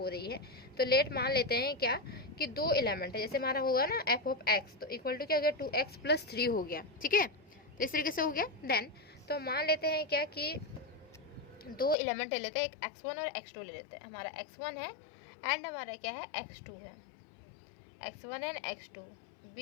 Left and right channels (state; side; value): drops out; right; at 12.0 s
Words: रही है. तो लेट मान लेते हैं क्या कि 2 एलिमेंट है, जैसे हमारा होगा ना f ऑफ x, तो इक्वल टू क्या हो गया, 2x प्लस 3 हो गया, ठीक है. तो इस तरीके से हो गया. देन तो मान लेते हैं क्या कि दो एलिमेंट ले लेते हैं, एक x1 और x2 ले लेते हैं। हमारा x1 है एंड हमारा क्या है, x2 है। x1 and x2